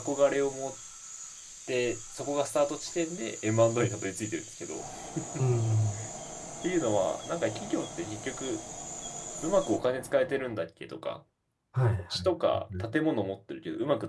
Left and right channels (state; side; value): identical; both; correlation 1.00